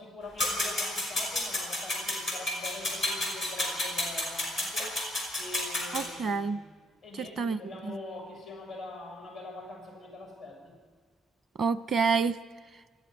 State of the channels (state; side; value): normal; both; correlation 0.68